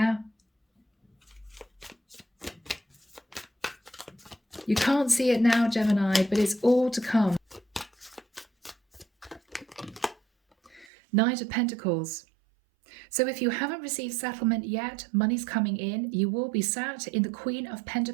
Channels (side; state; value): left; drops out; at 10.9 s